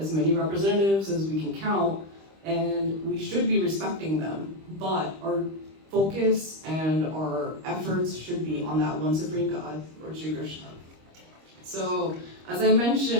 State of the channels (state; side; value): late; left; 25 ms